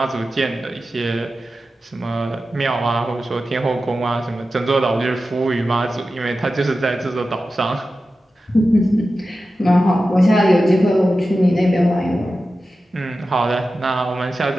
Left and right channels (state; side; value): normal; both; correlation 0.93